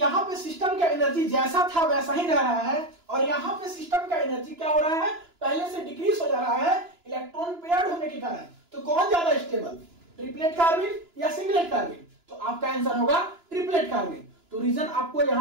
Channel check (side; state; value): left; late; 2.9 ms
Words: पे सिस्टम का एनर्जी जैसा था वैसा ही रह रहा है और यहां पे सिस्टम का एनर्जी क्या हो रहा है, पहले से डिक्रीज हो जा रहा है इलेक्ट्रॉन पेयर्ड होने के कारण। तो कौन ज्यादा स्टेबल, ट्रिपलेट कार्बन या सिंगलेट कार्बन? तो आपका आंसर होगा ट्रिपलेट कार्बन। तो रीजन आपको